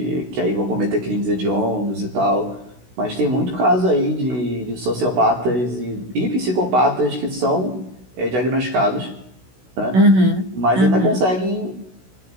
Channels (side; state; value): left; late; 16 ms